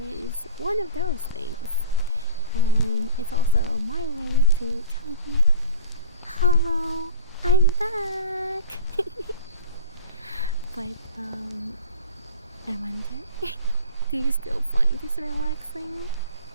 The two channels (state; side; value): inverted; both; correlation -0.38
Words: one of those things. And it's also my way to tell you, hello, I'm back. But I wonder, do you still find this relaxing?